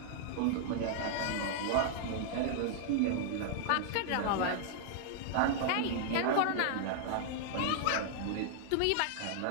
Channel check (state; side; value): different; both; correlation -0.01